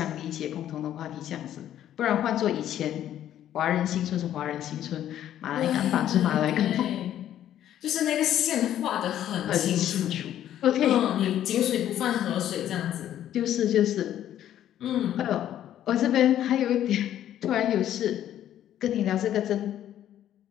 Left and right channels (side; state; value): right; quieter; 11.4 dB